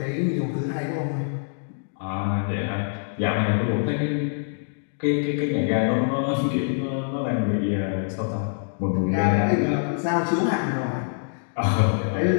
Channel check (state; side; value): silent; right; digital silence